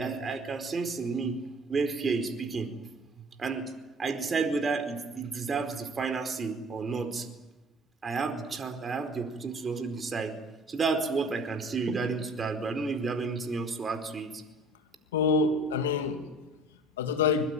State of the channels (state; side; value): normal; both; correlation 0.49